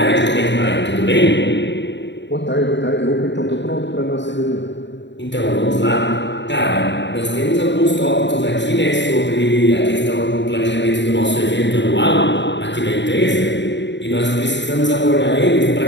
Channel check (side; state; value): right; late; 0.52 ms